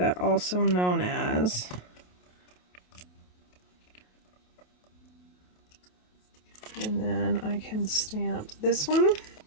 also known as. And then I can stamp this one.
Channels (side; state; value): right; late; 28 ms